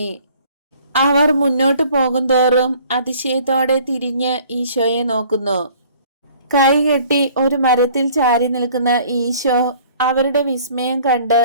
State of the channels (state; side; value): inverted; both; correlation -0.54